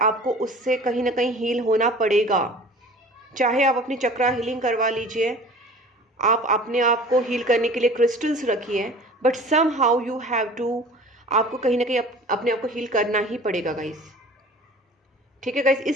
उससे कहीं ना कहीं हील होना पड़ेगा। चाहे आप अपनी चक्रा हीलिंग करवा लीजिए, आप अपने आप को हील करने के लिए क्रिस्टल्स रखिए, but somehow you have to, आपको कहीं ना कहीं अपने आप को हील करना ही पड़ेगा गाइस। ठीक है गाइस,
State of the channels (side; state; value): both; normal; correlation 0.43